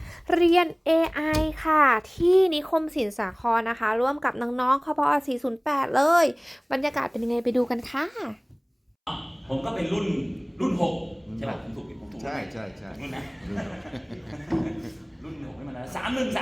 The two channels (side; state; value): both; identical; correlation 1.00